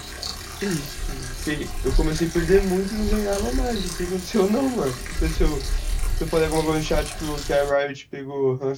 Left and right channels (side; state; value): both; identical; correlation 1.00